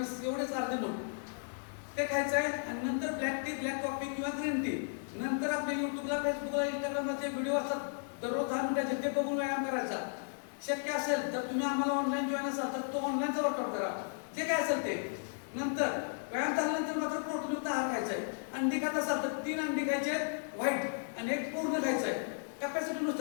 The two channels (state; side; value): silent; right; 55 dB below the other